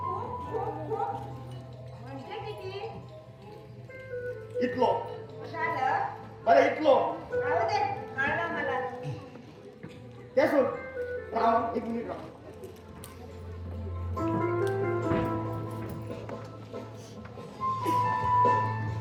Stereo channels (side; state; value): both; identical; correlation 1.00